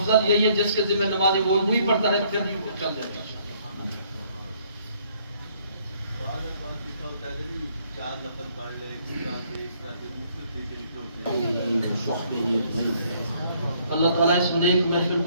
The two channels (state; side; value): inverted; both; correlation -0.65